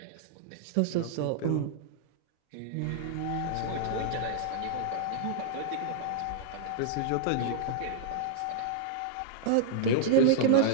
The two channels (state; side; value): different; both; correlation -0.01